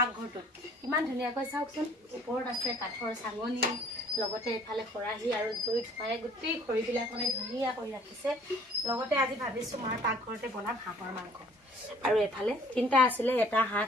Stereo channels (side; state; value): both; normal; correlation 0.55